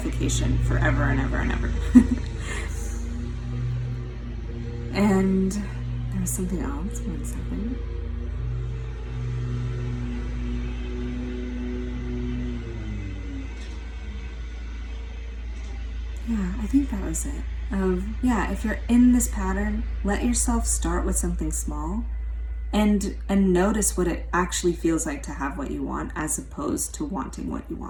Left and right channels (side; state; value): both; identical; correlation 1.00